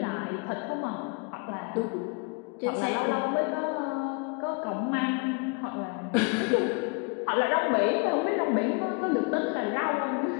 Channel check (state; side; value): quieter; right; 34.0 dB